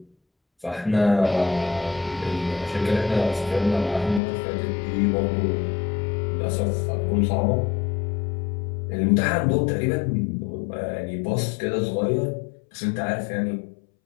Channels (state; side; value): drops out; right; at 4.2 s